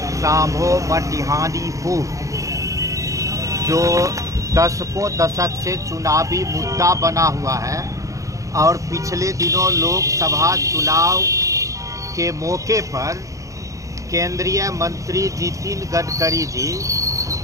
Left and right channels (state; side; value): late; left; 0.16 ms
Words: सांभो बटिहानी पुल जो दशकों दशक से चुनावी मुद्दा बना हुआ है और पिछले दिनों लोकसभा चुनाव के मौके पर केंद्रीय मंत्री नितिन गडकरी जी